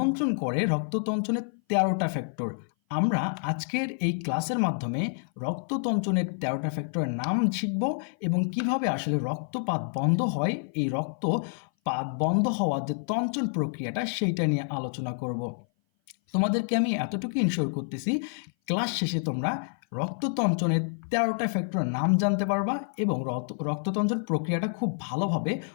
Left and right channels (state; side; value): silent; right; 57 dB below the other